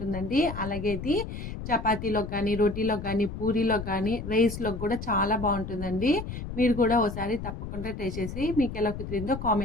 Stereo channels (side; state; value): left; noise; rumble, 8 dB below the sound